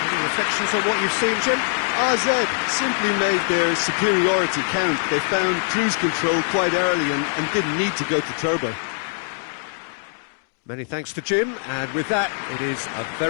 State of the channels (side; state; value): right; silent; digital silence